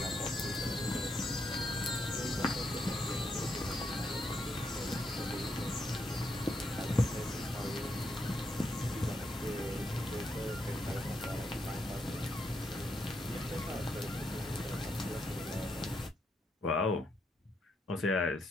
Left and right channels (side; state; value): both; normal; correlation 0.79